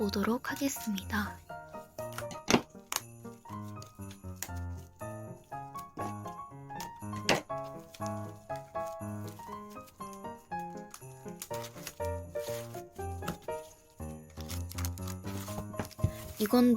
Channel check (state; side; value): identical; both; correlation 1.00